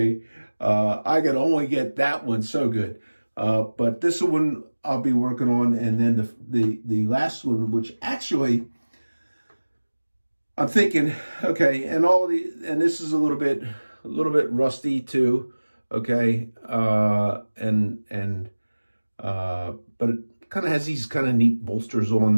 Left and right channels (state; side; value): inverted; both; correlation -1.00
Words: I could only get that one so good. But this one I'll be working on, and then the last one, which actually I'm thinking, okay, and this is a little bit rusty too. okay, but it kind of has these kind of neat bolsters on